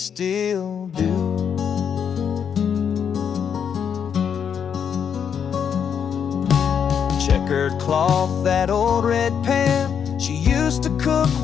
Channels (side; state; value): right; quieter; 7.6 dB